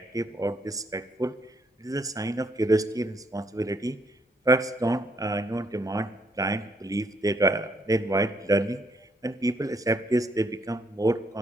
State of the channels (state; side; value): normal; both; correlation 0.72